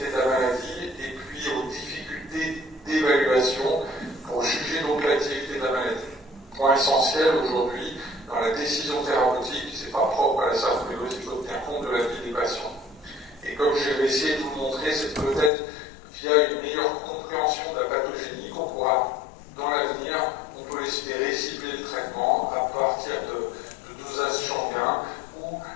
de la maladie et puis aux difficultés d'évaluation pour juger donc l'activité de la maladie. Point essentiel aujourd'hui dans la décision thérapeutique, c'est pas propre à la sarcoïdose, il faut tenir compte de la vie des patients. Et comme je vais essayer de vous le montrer, c'est peut-être via une meilleure compréhension de la pathogénie qu'on pourra, dans l'avenir, on peut espérer cibler le traitement à partir de dosages sanguins ou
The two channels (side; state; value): right; drops out; at 15.5 s